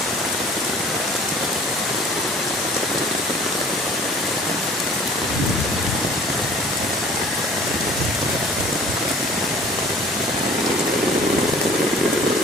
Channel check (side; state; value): both; normal; correlation 0.49